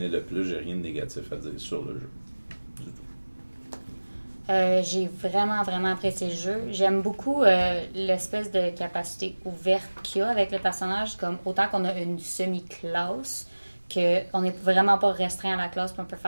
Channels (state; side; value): inverted; both; correlation -1.00